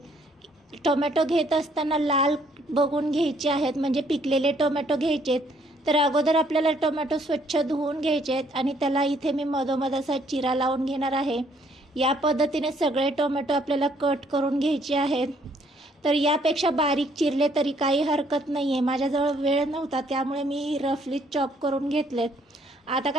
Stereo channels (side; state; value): both; normal; correlation 0.66